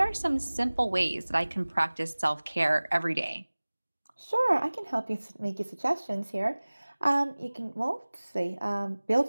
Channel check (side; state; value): both; inverted; correlation -1.00